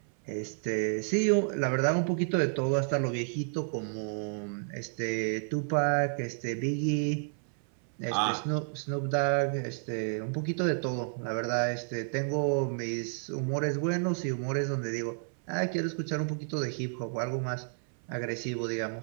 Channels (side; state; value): left; silent; 57 dB below the other